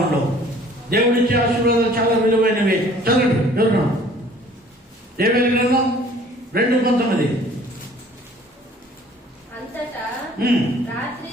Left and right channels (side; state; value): both; normal; correlation 0.53